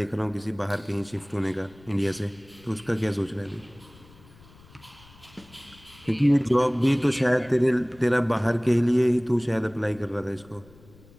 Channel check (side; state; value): left; noise; rumble, 25 dB below the sound